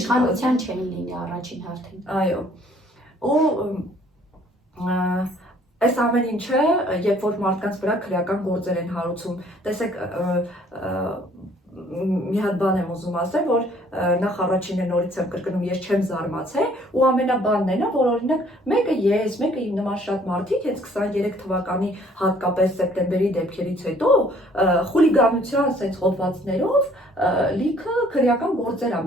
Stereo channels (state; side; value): normal; both; correlation 0.59